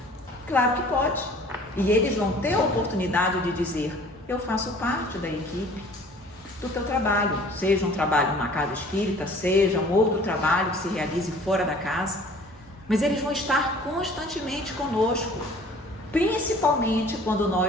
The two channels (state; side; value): normal; both; correlation 0.50